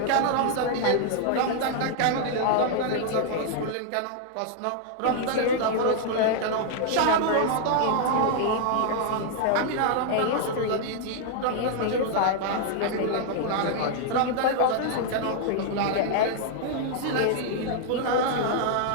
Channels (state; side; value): different; both; correlation -0.01